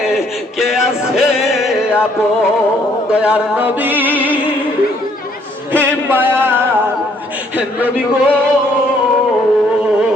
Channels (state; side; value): normal; both; correlation 0.66